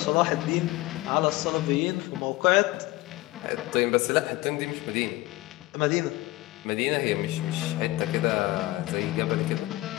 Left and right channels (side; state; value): right; quieter; 19.2 dB